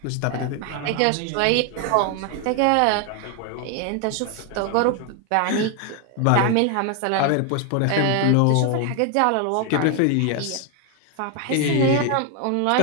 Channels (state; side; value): different; both; correlation 0.01